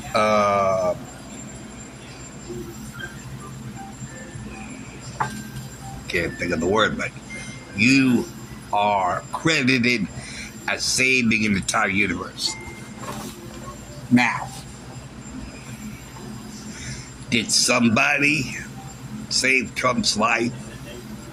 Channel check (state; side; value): identical; both; correlation 1.00